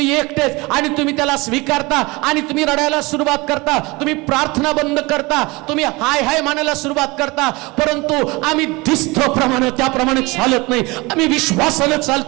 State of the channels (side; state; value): left; quieter; 23.9 dB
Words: एकटेच. आणि तुम्ही त्याला स्वीकारता आणि तुम्ही रडायला सुरुवात करता, तुम्ही प्रार्थना बंद करता, तुम्ही हाय हाय म्हणायला सुरुवात करता. परंतु आम्ही दिसतो प्रमाणे त्याप्रमाणे चालत नाही. आम्ही विश्वासाने